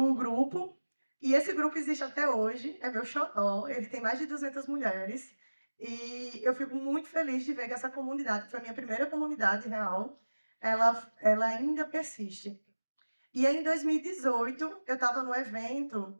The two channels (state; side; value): inverted; both; correlation -1.00